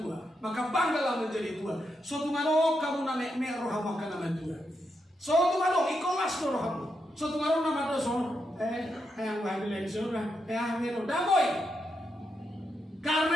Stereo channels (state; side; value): normal; both; correlation 0.83